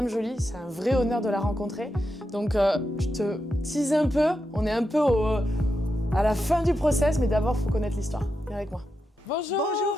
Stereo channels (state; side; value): normal; both; correlation 0.87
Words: Jolie, c'est un vrai honneur de la rencontrer. Donc je te tease un peu, on est un peu à la fin du process mais d'abord il faut connaître l'histoire. Viens avec moi. Bonjour. Bonjour